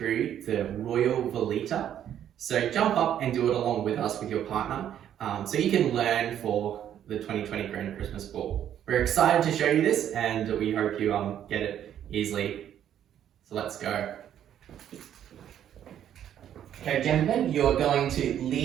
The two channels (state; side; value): quieter; left; 10.3 dB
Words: the Royal Veleta, so jump up and do it along with us with your partner so you can learn for the 2020 Grand Christmas Ball. We're excited to show you this and we hope you get it easily, so let's go. Okay, gentlemen, you're going to